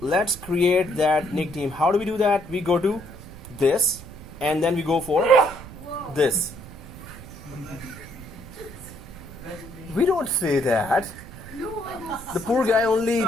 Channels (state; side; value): noise; right; rumble, 15 dB below the sound